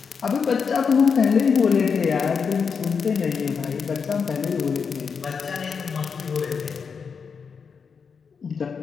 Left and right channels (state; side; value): quieter; right; 5.9 dB